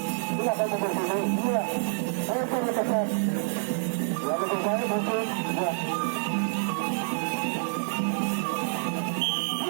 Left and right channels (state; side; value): silent; left; digital silence